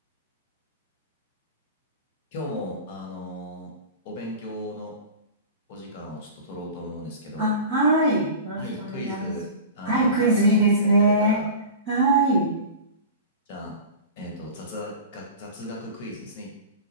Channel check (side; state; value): both; inverted; correlation -0.33